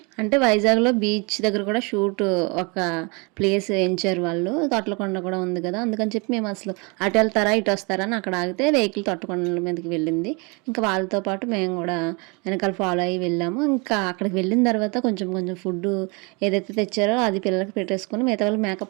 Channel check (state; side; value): quieter; left; 30.4 dB